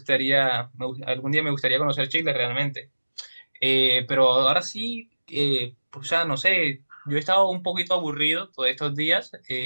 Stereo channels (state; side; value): inverted; both; correlation -1.00